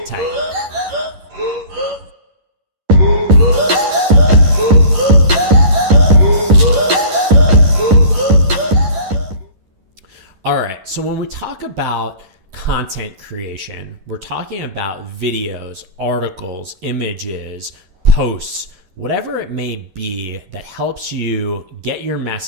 tight. All right, so when we talk about content creation, we're talking about videos, articles, images, posts, whatever it may be that helps you get your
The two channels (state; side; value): late; left; 11 ms